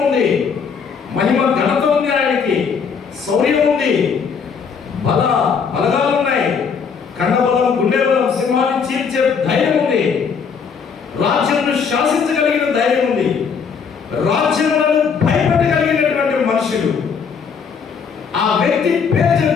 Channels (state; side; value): quieter; right; 6.2 dB